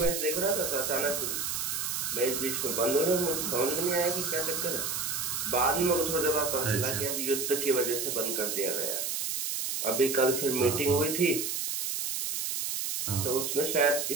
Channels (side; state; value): right; noise; hiss, 2 dB below the sound